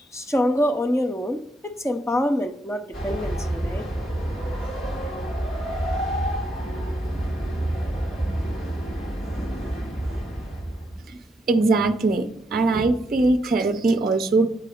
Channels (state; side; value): normal; both; correlation 0.78